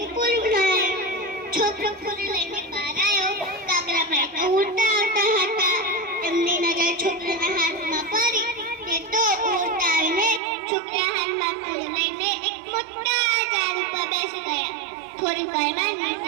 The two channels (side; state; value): left; drops out; at 10.4 s